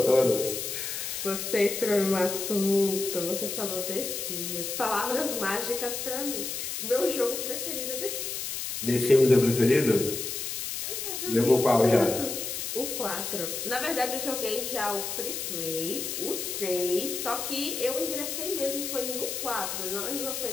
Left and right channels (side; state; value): left; noise; hiss, 4 dB below the sound